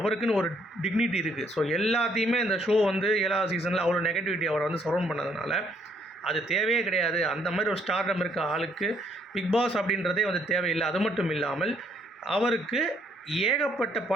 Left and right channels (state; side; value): normal; both; correlation 0.68